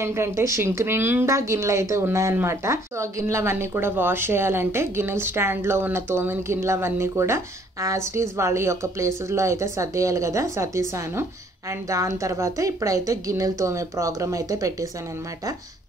ఏంటంటే షింక్ నిండా గిన్నెలు అయితే ఉన్నాయన్నమాట. సో ఆ గిన్నెలు అవన్నీ కూడా వాష్ చేయాలంటే గిన్నెల స్టాండ్లో ఉన్న తోమిన గిన్నెలు అవన్నీ కూడా యాజ్ ఇట్ ఈజ్ వాళ్ళ యొక్క ప్లేసెస్లో అయితే సర్దేయాలి కదా, సర్దేశాను. అండ్ దాని తర్వాత ఇప్పుడైతే గిన్నెలు తోమే ప్రోగ్రామ్ అయితే పెట్టేశాను అనమాట.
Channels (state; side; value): normal; both; correlation 0.62